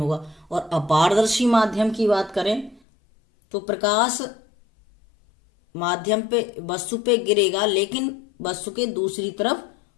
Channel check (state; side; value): drops out; right; at 2.8 s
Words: और अपारदर्शी माध्यम की बात करें तो प्रकाश माध्यम पे वस्तु पे गिरेगा लेकिन वस्तु के दूसरी तरफ